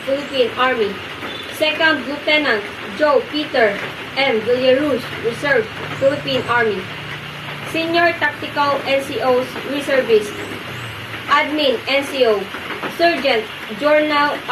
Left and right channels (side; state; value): both; identical; correlation 1.00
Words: Philippine Army. 2nd Lieutenant Joe Peter M. Villaruz, Reserve, Philippine Army. Senior Tactical NCOs, Reservist. Admin NCO, Sergeant Jornal